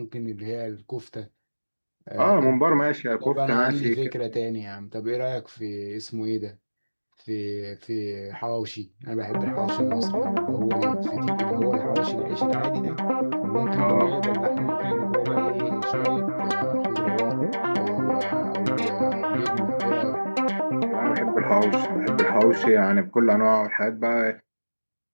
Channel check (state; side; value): inverted; both; correlation -1.00